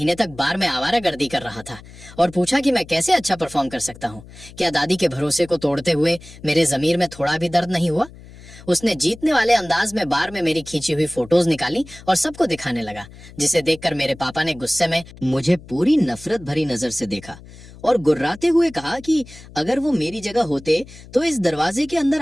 तक बार में आवारागर्दी कर रहा था, और पूछा कि मैं कैसे अच्छा परफॉर्म कर सकता हूँ। क्या दादी के भरोसे को तोड़ते हुए मेरे जमीर में थोड़ा भी दर्द नहीं हुआ? उसने जीतने वाले अंदाज में बार में मेरी खींची हुई फोटोज निकाली और सबको दिखाने लगा, जिसे देखकर मेरे पापा ने गुस्से में मुझे पूरी नफरत भरी नजर से देखा और गुर्राते हुए कहा कि अगर वो मेरी जगह होते तो इस दरवाजे के अंदर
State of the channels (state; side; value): noise; left; hum, 19 dB below the sound